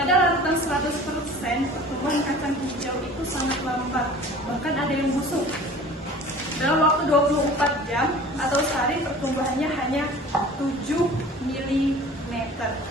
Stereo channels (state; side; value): normal; both; correlation 0.44